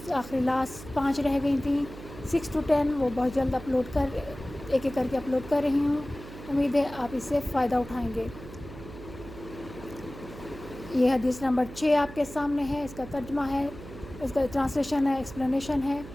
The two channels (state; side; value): noise; right; hum, 14 dB below the sound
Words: आखिरी लास्ट 5 रह गई थी, 6 to 10 वो बहुत जल्द अपलोड कर एक करके अपलोड कर रही हूँ। उम्मीद है आप इससे फ़ायदा उठाएंगे। ये हदीस नंबर 6 आपके सामने है। इसका तर्जुमा है, इसका ट्रांसलेशन है, एक्सप्लेनेशन है